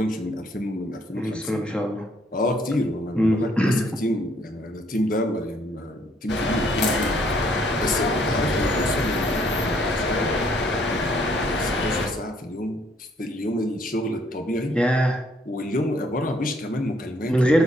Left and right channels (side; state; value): both; normal; correlation 0.66